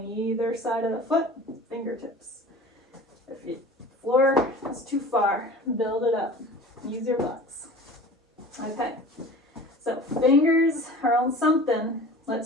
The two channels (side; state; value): both; normal; correlation 0.40